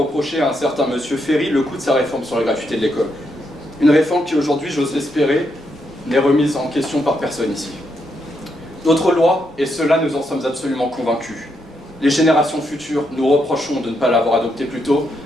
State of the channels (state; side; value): normal; both; correlation 0.79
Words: à un certain monsieur Ferry le coût de sa réforme sur la gratuité de l'école. Une réforme qui aujourd'hui, j'ose l'espérer, n'est remise en question par personne ici. Notre loi, et cela nous en sommes absolument convaincus, les générations futures nous reprocheront de ne pas l'avoir adoptée plus tôt,